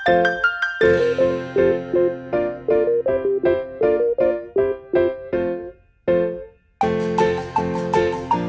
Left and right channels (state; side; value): identical; both; correlation 1.00